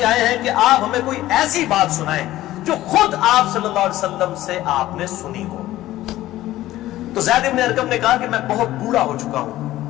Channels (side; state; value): right; quieter; 15.2 dB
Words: آئے ہیں کہ آپ ہمیں کوئی ایسی بات سنائیں جو خود آپ صلی اللہ علیہ وسلم سے آپ نے سنی ہو. تو زید بن ارقم نے کہا کہ میں بہت بوڑھا ہو چکا ہوں,